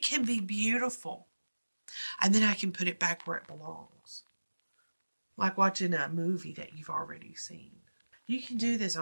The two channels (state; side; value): inverted; both; correlation -1.00